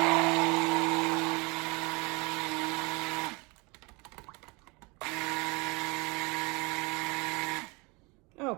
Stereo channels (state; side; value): quieter; left; 27.7 dB